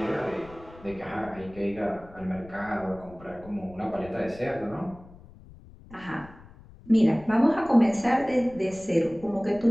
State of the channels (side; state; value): left; noise; rumble, 21 dB below the sound